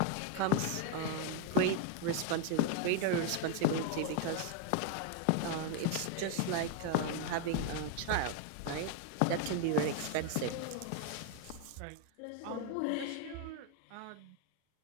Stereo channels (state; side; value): different; both; correlation 0.00